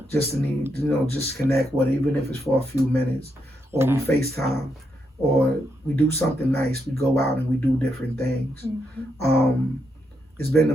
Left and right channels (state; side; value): normal; both; correlation 0.81